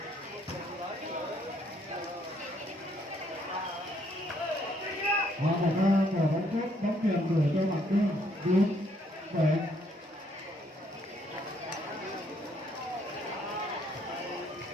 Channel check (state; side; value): normal; both; correlation 0.69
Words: Và một quả bóng tốt, bóng điểm gửi cho Quảng Trung 4-7.